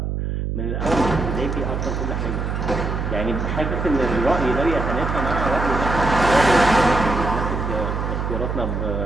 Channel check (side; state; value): right; noise; hum, 2 dB below the sound